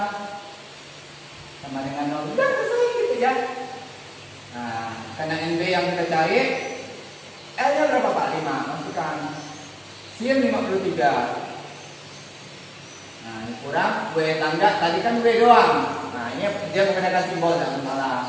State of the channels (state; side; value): identical; both; correlation 1.00